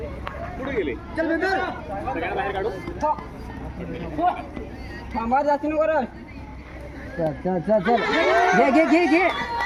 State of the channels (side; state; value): both; identical; correlation 1.00